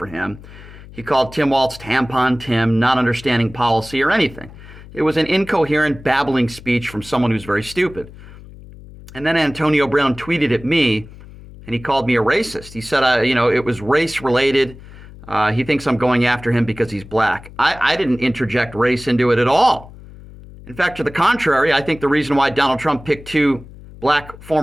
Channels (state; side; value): noise; left; hum, 18 dB below the sound